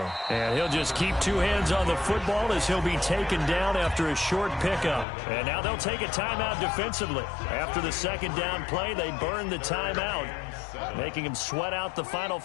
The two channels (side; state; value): right; drops out; at 5.1 s